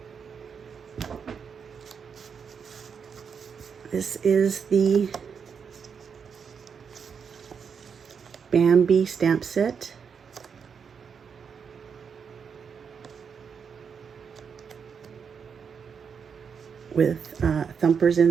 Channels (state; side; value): quieter; left; 6.5 dB